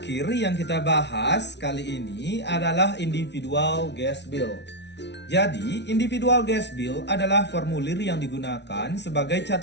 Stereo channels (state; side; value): late; right; 0.50 ms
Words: yang kita bahas kali ini adalah individual gas bill. Jadi, individual gas bill adalah formulir yang digunakan sebagai